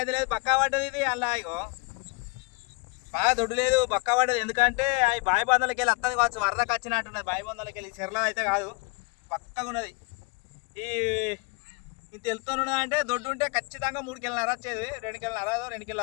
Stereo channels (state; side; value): quieter; right; 30.6 dB